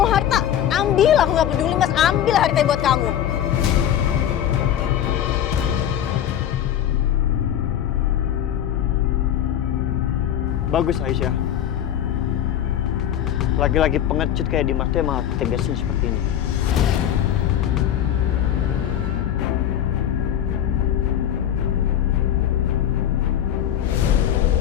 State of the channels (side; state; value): right; quieter; 10.5 dB